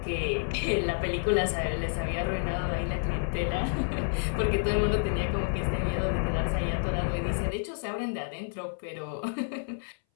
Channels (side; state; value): right; silent; 58 dB below the other